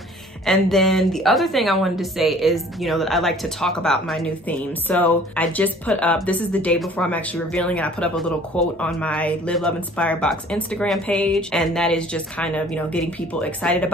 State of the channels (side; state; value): both; normal; correlation 0.52